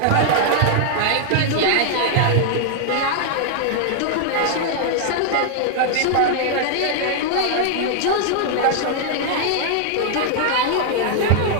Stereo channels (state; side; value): different; both; correlation 0.00